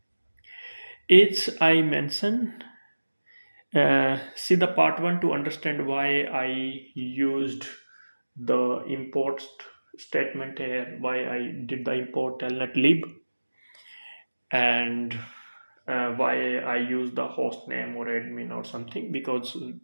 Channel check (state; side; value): inverted; both; correlation -1.00